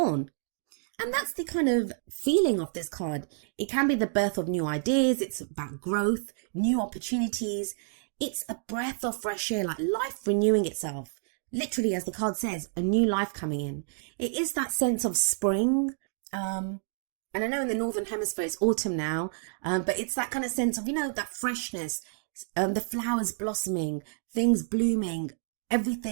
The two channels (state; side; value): silent; left; digital silence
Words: And that's the kind of feeling of this card. It can be the birth of new ideas. It's about growth, new opportunities. It's a breath of fresh air, like life renewing itself. Literally, as the card says, a new life coming in. It is that sense of spring. And I know in the Northern Hemisphere it's autumn now, but it's that kind of sense of, that freshness, the flowers blossoming, things blooming,